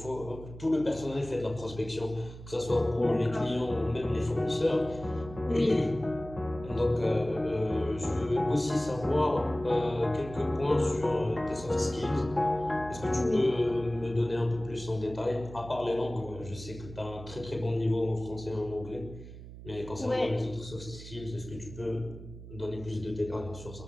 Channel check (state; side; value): noise; right; hum, 14 dB below the sound